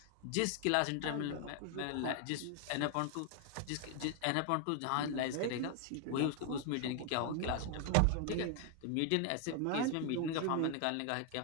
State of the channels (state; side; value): different; both; correlation 0.00